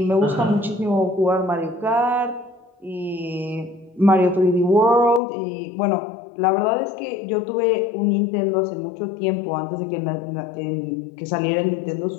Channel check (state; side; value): drops out; right; at 5.2 s